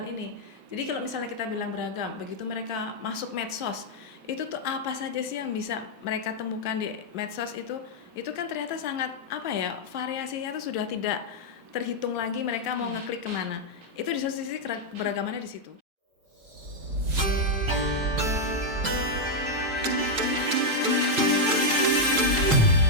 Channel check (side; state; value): left; late; 4.6 ms